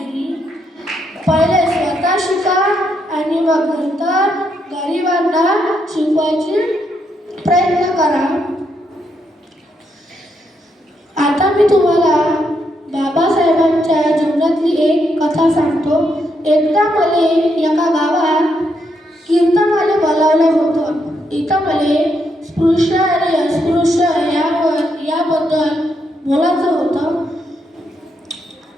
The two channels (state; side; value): normal; both; correlation 0.78